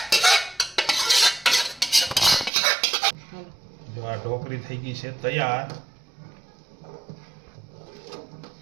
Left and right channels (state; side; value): drops out; left; at 2.5 s